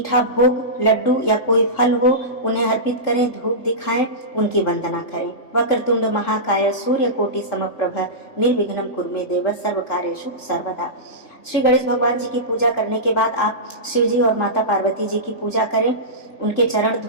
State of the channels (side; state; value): right; late; 3.3 ms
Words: भोग, लड्डू या कोई फल हो उन्हें अर्पित करें, धूप दिखाएं, उनकी वंदना करें। वक्रतुंड महाकाय सूर्यकोटि समप्रभ निर्विघ्नं कुरु मे देव सर्व कार्येषु सर्वदा। श्री गणेश भगवान जी की पूजा करने के बाद आप शिव जी और माता पार्वती जी की पूजा करें, उनके चरण